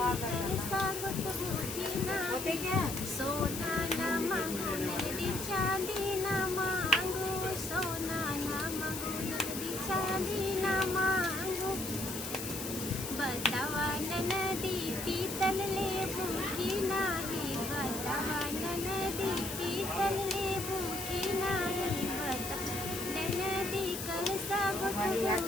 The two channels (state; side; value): noise; left; hiss, 7 dB below the sound